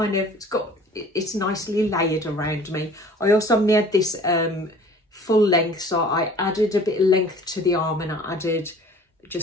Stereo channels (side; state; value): both; normal; correlation 0.48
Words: nicely layered around me. I also made this full length, so I added a bit of length to the arm, and I added